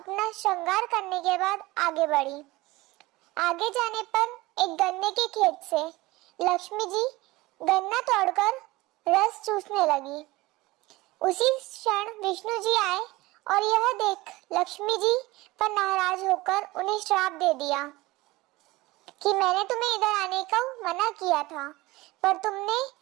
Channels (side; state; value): left; quieter; 20.3 dB